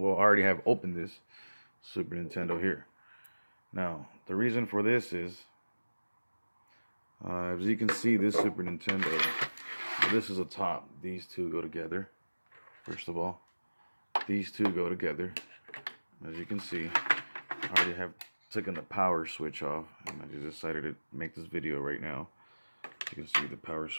I already have opened this Super Nintendo here. Now, the reason for this is, as you can see, this Super Nintendo, this is a top. These two go together. First of all, these two go together. As you can see, I already have taken the power switch off, and I just decided to make this video right now. You can see the power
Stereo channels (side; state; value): both; inverted; correlation -1.00